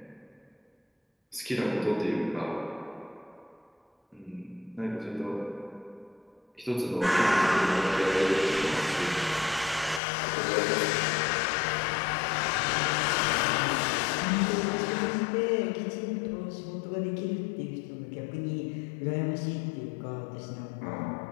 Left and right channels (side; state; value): right; drops out; at 10.0 s